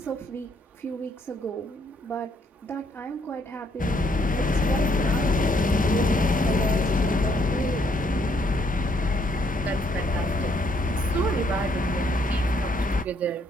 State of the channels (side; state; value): both; normal; correlation 0.69